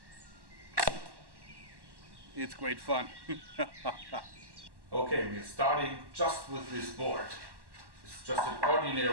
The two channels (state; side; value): late; left; 1.1 ms